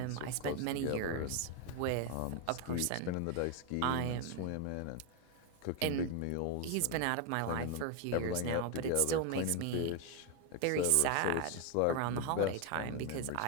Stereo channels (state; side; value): different; both; correlation 0.01